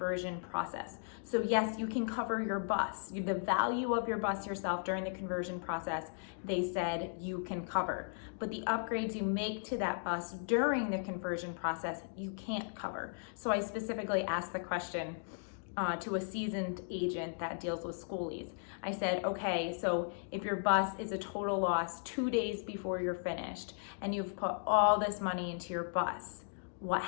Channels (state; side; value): silent; right; digital silence